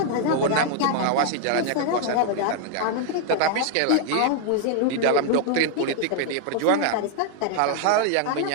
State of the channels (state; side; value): different; both; correlation 0.00